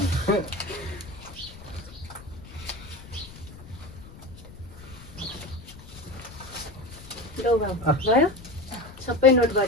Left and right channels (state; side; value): noise; left; rumble, 17 dB below the sound